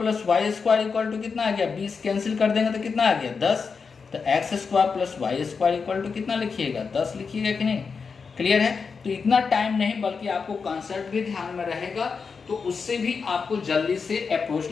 Y square equal to कितना आ गया 20, कैंसिल कर देंगे तो कितना आ गया 10। तो X square plus Y square equal to कितना लिखिएगा 10 लिखिएगा कि नहीं। क्लियर है, तो इतना टाइम नहीं बल्कि आपको कॉन्सेप्ट भी ध्यान में रहेगा तो उससे भी आपको जल्दी से अप्रोच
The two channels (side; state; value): right; quieter; 5.3 dB